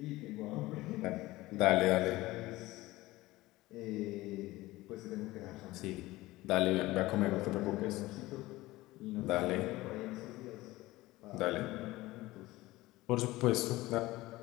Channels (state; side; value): quieter; right; 18.6 dB